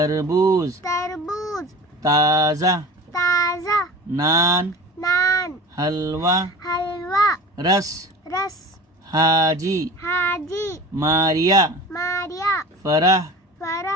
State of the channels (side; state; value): both; normal; correlation 0.36